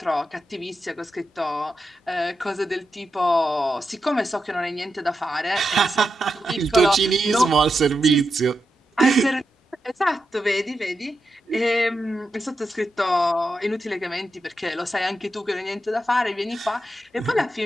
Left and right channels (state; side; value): normal; both; correlation 0.87